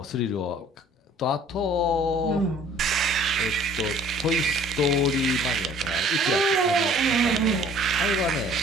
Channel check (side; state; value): both; normal; correlation 0.53